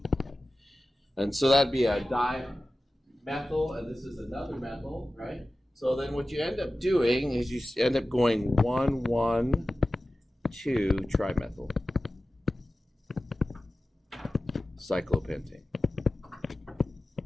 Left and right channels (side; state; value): both; normal; correlation 0.95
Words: And so that'd be a dimethyl, and this is another methyl, right? So then what you end up doing is you end up going 1, 1, 2 trimethyl cyclopentane.